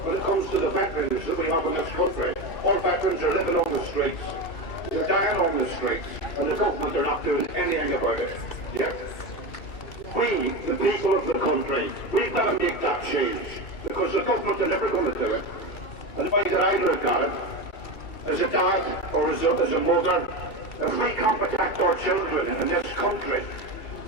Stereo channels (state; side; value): late; right; 2.7 ms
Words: when it comes to the veterans that we have in this country, our veterans are living on the streets. They're dying on the streets, and the government are not doing anything about it. Yeah? We, the people of the country, we've got to make that change, because the government are never going to do it. And the way that I look at it, as a dad or as a mother, if we can't protect our children in this country,